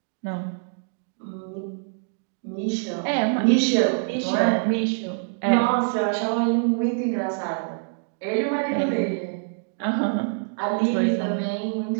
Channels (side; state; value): left; silent; digital silence